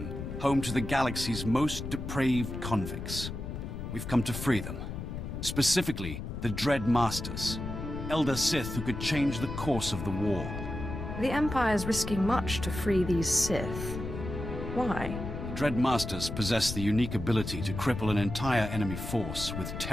home to the galaxy's most depraved convicts. We've come to free them. Specifically, the Dread Masters. Elder Sith who could change the course of the war. The Empire's risking much to free these Sith. Why? Dreadmasters possess the unique ability to cripple an entire enemy force with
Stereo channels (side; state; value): left; noise; rumble, 6 dB below the sound